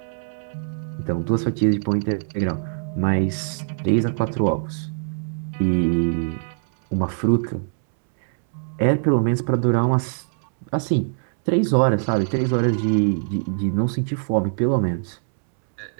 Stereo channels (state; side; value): silent; left; 64 dB below the other